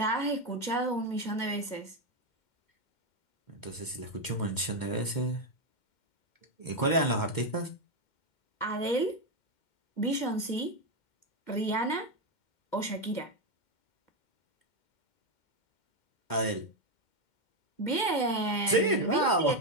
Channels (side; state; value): right; late; 2.1 ms